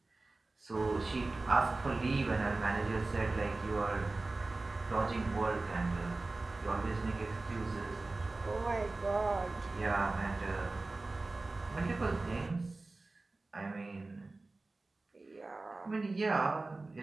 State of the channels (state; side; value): quieter; left; 3.3 dB